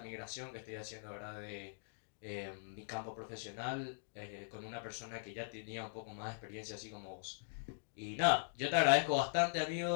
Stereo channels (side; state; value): right; silent; digital silence